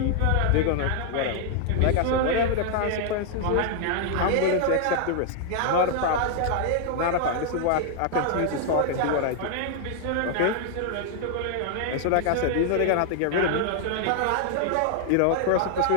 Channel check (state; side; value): different; both; correlation 0.00